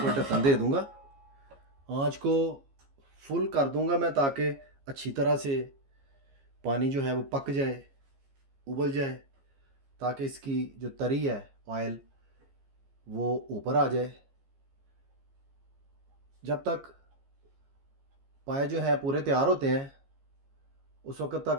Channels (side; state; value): left; late; 15 ms